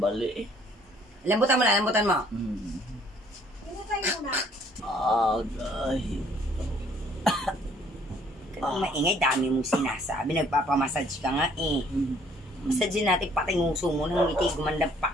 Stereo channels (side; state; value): both; normal; correlation 0.61